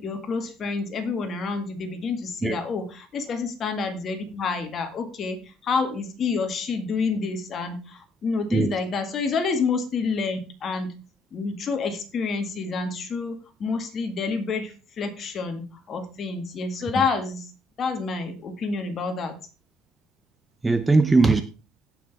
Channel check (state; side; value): normal; both; correlation 0.73